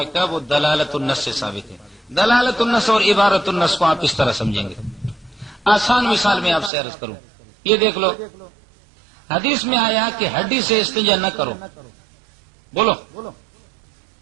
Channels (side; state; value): left; drops out; at 6.7 s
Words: وہ دلالت النص سے ثابت ہے۔ دلالت النص اور عبارت النص کو آپ اس طرح سمجھیں گے۔ آسان مثال میں آپ سے عرض کروں، یہ دیکھ لو، حدیث میں آیا کہ ہڈی سے استنجا نہ کرو، بولو،